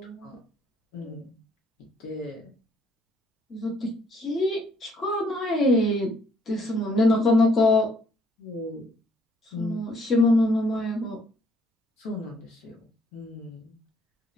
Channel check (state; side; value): normal; both; correlation 0.66